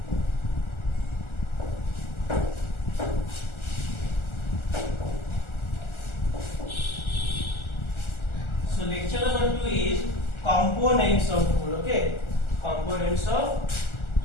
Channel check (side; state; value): right; late; 1.4 ms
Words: So lecture number 2 is components of food. Okay, components of